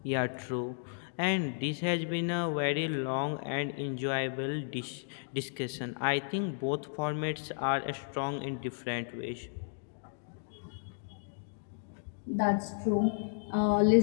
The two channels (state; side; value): silent; right; digital silence